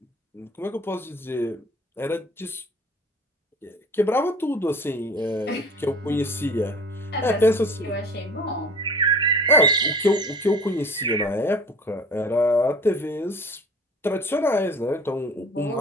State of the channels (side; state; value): both; normal; correlation 0.44